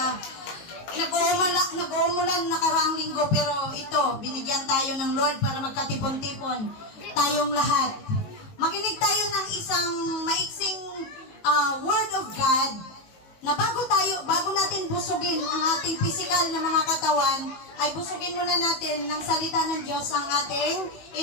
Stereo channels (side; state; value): right; late; 18 ms